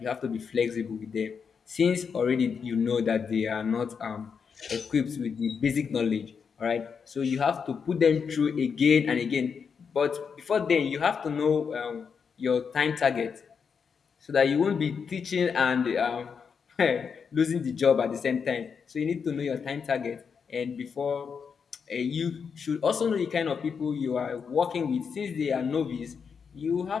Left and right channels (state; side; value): quieter; right; 6.2 dB